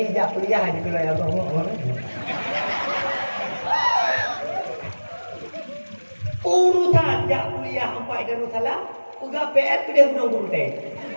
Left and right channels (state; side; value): inverted; both; correlation -1.00